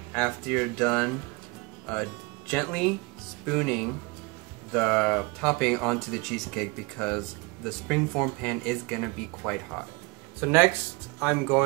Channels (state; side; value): quieter; left; 27.1 dB